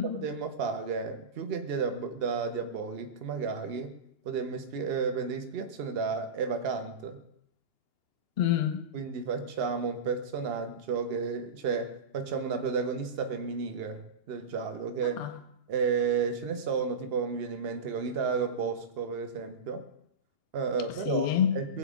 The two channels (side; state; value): left; late; 2.8 ms